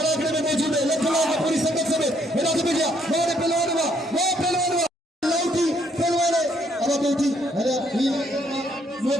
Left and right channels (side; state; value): both; normal; correlation 0.69